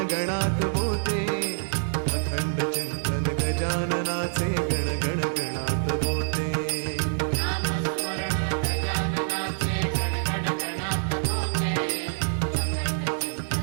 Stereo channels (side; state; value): left; silent; digital silence